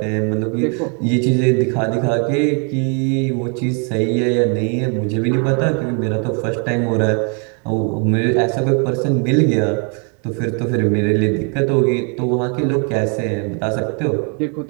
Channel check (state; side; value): quieter; left; 38.4 dB